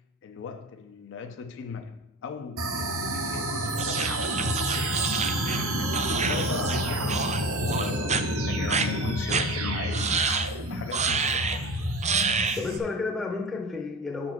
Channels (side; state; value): both; normal; correlation 0.32